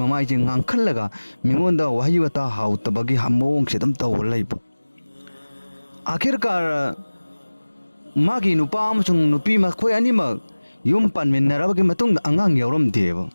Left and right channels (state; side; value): inverted; both; correlation -1.00